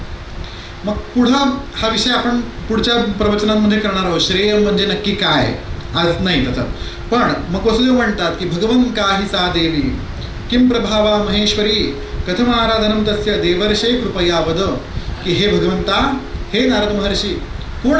मग पुढं हा विषय आपण पुढच्या प्रवचनांमध्ये करणार आहोत. श्रेय म्हणजे नक्की काय, आज नाही त्याचा. पण मग वसुदेव म्हणतात की भगवं काही सा देवी किं प्रभावा महेश्वरी कथम आराधनम तस्य देवर्षे कृपया वद. की हे भगवंता, हे नारद महर्षी, कोण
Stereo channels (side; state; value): both; identical; correlation 1.00